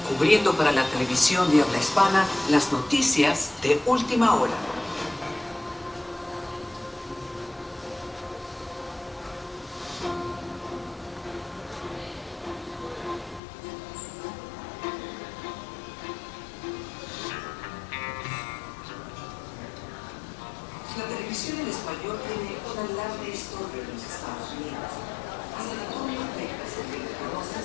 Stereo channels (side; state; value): right; drops out; at 13.4 s